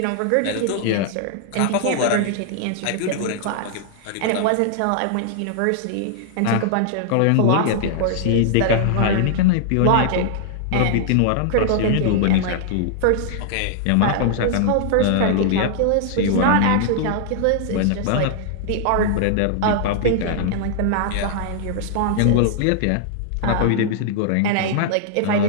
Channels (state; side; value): different; both; correlation -0.01